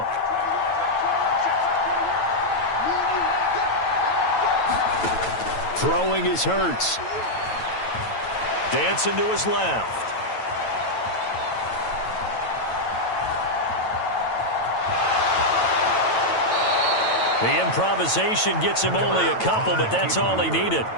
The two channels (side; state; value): right; late; 9.0 ms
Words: Throwing is Hurts. Dancing to his left. The improvisation gets him only a couple, but that's all he needed.